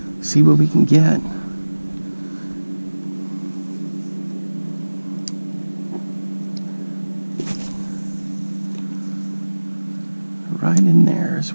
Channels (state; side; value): inverted; both; correlation -1.00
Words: see what we can get. Right in there is